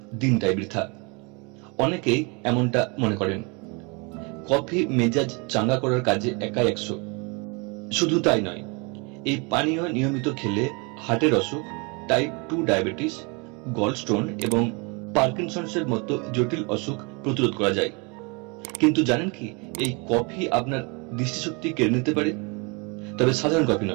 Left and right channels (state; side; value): quieter; left; 30.9 dB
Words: দিনটাই বৃথা। অনেকেই এমনটা মনে করেন। কফি মেজাজ চাঙ্গা করার কাজে একাই 100। শুধু তাই নয়, এই পানীয় নিয়মিত খেলে হার্টের অসুখ, টাইপ 2 ডায়াবেটিস, গলস্টোন এবং পার্কিনসন্সের মতো জটিল অসুখ প্রতিরোধ করা যায়। কিন্তু জানেন কি, এই কফি আপনার দৃষ্টিশক্তি কেড়ে নিতে পারে। তবে সাধারণ কফি